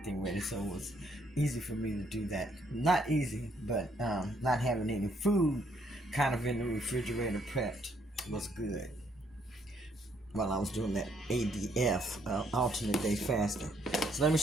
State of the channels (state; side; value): normal; both; correlation 0.70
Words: ready, so it was easy for me to do that. Not easy, but not having any food kind of in the refrigerator prepped was good while I was doing that ADF, alternate day fasting. So let me